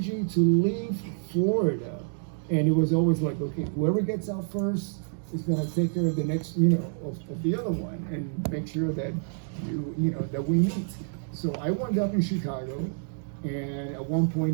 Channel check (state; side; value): silent; left; digital silence